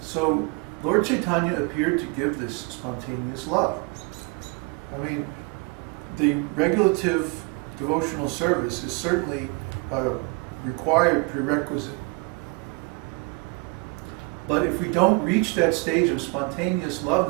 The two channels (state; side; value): quieter; left; 30.4 dB